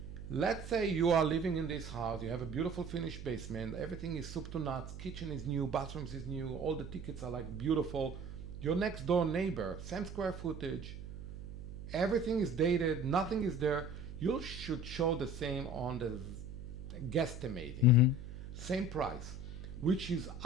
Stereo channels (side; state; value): right; noise; hum, 10 dB below the sound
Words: Let's say you are living in this house, you have a beautiful finished basement, everything is soup to nuts, kitchen is new, bathrooms is new, all the tickets are like beautiful. Your next door neighbor, same square footage, everything is dated, nothing is there. You should show the same on the guesstimating. Same price, which is